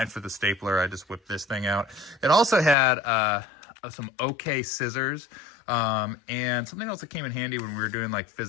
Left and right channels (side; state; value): right; drops out; at 2.8 s